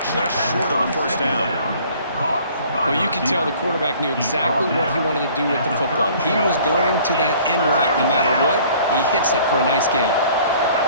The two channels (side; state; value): both; inverted; correlation -0.53